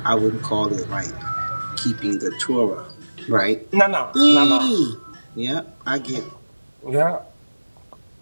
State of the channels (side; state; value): both; inverted; correlation -1.00